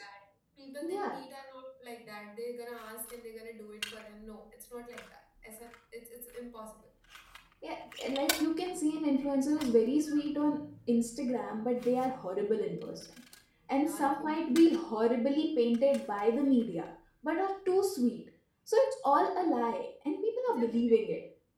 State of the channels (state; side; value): identical; both; correlation 1.00